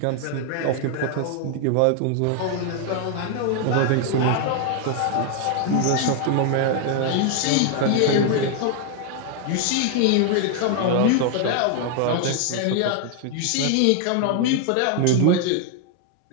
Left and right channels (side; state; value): both; different; correlation 0.00